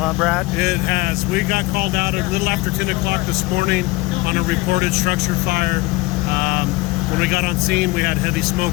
Brad? It has. We got called out a little after 10 o'clock this morning on a reported structure fire. When we got on scene, we had heavy smoke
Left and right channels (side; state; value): right; quieter; 21.7 dB